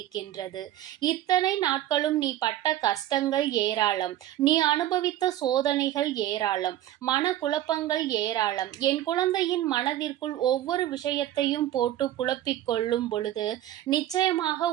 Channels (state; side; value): quieter; left; 13.2 dB